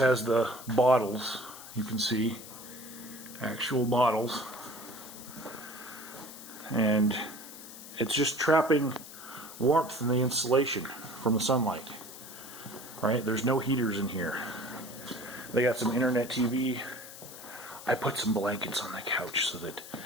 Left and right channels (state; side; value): noise; left; hiss, 14 dB below the sound